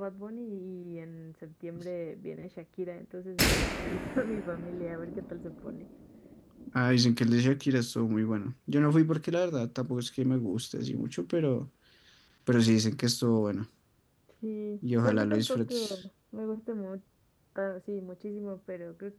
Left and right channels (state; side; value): identical; both; correlation 1.00